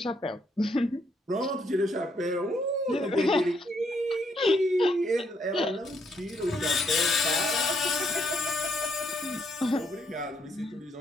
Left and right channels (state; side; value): normal; both; correlation 0.74